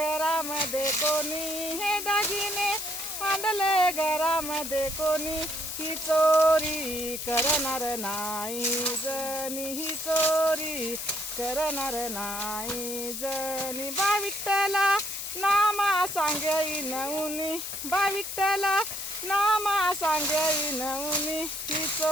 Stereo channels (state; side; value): noise; left; hiss, 6 dB below the sound